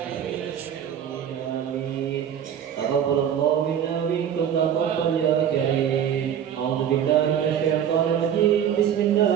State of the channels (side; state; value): left; quieter; 9.2 dB